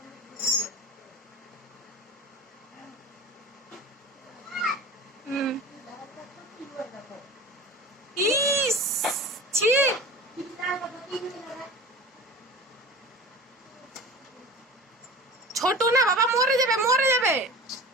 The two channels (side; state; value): both; normal; correlation 0.36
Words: ইস, ছি। ছোট না বাবা, মরে যাবে, মরে যাবে।